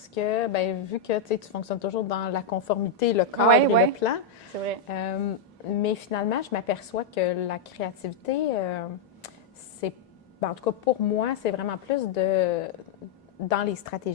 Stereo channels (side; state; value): right; quieter; 4.5 dB